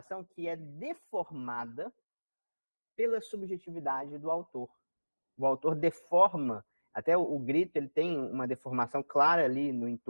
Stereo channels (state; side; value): inverted; both; correlation -1.00